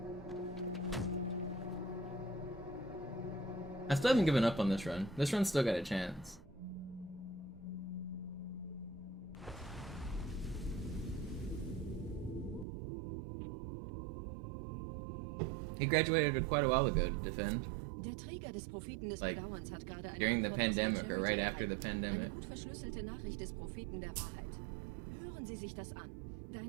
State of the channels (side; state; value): left; drops out; at 12.7 s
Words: I still haven't given up on this run. This run's still got a chance. He graduated quite a while ago to defend. Der Träger des Propheten des Like, Bedauerns hat gerade eine during the Antwort pandemic aus or der right Charity after the erhalten. pandemic. Eine gut verschlüsselte Nachricht des Propheten der Wahrheit. Hören Sie sich das an.